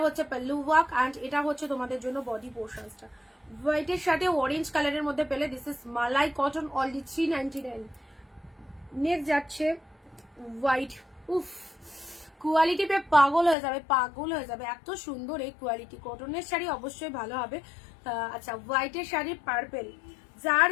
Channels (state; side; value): drops out; right; at 13.6 s